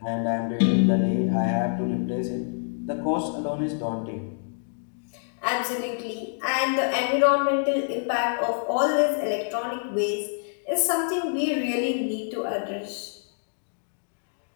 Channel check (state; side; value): silent; right; digital silence